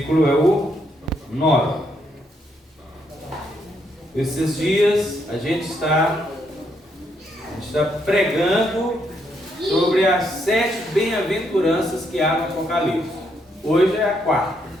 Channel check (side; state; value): both; normal; correlation 0.76